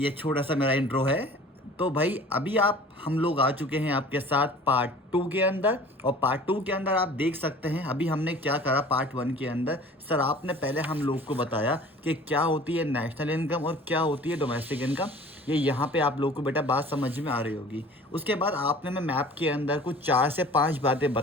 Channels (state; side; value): normal; both; correlation 0.46